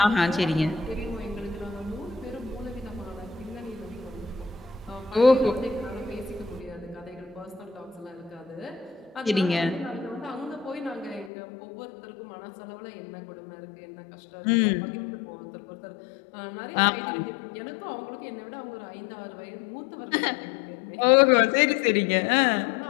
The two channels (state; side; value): drops out; right; at 11.3 s